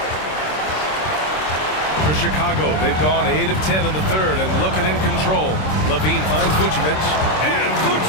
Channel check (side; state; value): right; late; 26 ms